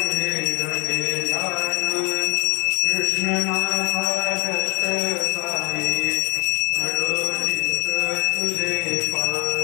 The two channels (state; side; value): quieter; right; 28.2 dB